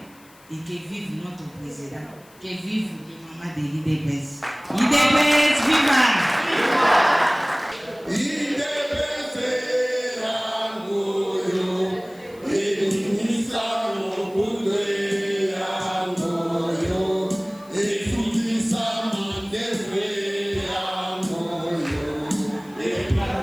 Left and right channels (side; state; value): left; noise; hiss, 27 dB below the sound